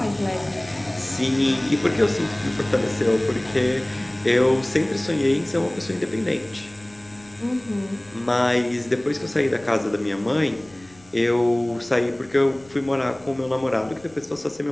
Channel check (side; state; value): left; noise; rumble, 27 dB below the sound